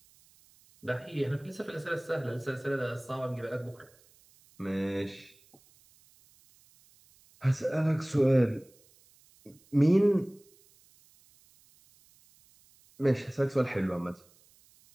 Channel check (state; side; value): noise; right; hiss, 30 dB below the sound